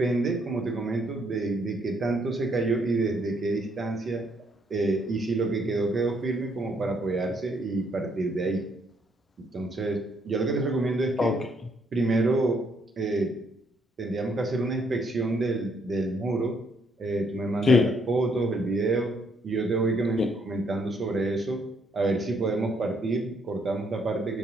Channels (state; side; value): normal; both; correlation 0.70